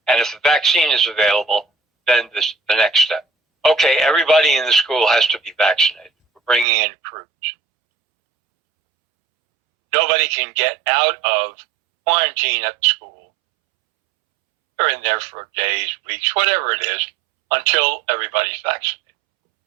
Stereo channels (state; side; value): drops out; left; at 6.7 s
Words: And if the vaccine is available, then the next step. Okay, everybody in the school has to be vaccinated. We're bringing in crews. Nobody can get out of quarantine at the school. They're in there for days, weeks, whatever it is, until everybody's vaccinated.